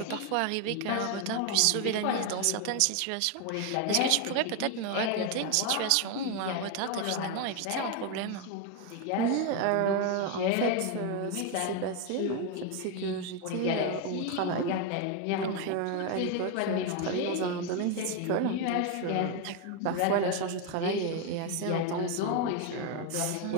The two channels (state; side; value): different; both; correlation 0.01